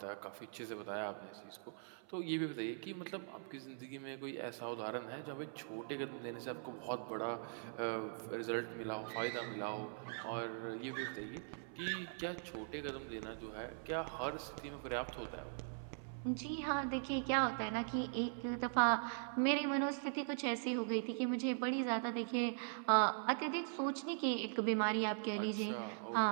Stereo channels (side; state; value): left; silent; 50 dB below the other